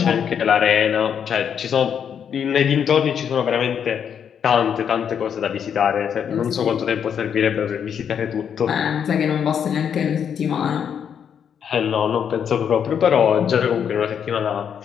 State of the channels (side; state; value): right; quieter; 8.0 dB